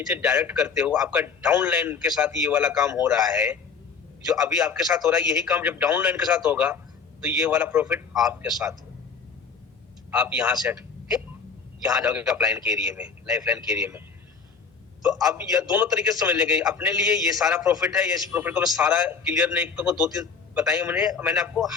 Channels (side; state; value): right; quieter; 5.6 dB